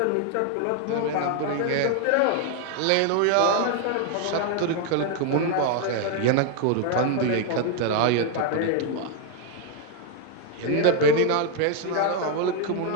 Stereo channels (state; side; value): different; both; correlation 0.00